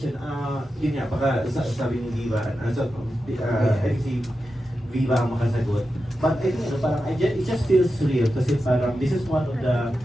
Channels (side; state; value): both; normal; correlation 0.90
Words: yun nga, baka sabi ni Viva, I think si Viva ang makasagot. But I think, parang, it just feels real kasi parang, this is one of the,